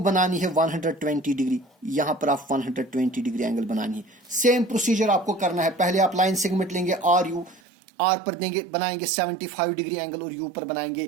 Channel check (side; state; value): left; drops out; at 7.6 s